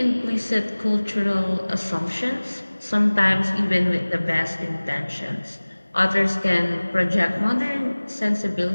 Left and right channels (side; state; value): both; inverted; correlation -1.00